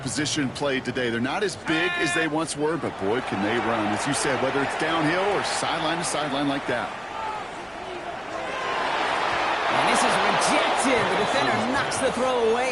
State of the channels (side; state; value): both; identical; correlation 1.00